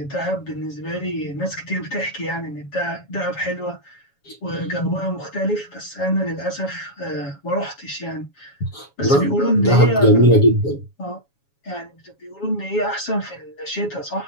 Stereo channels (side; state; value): right; late; 7.2 ms